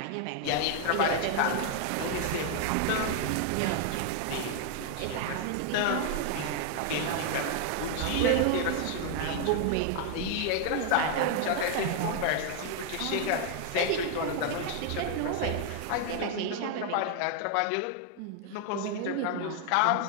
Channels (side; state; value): both; different; correlation 0.00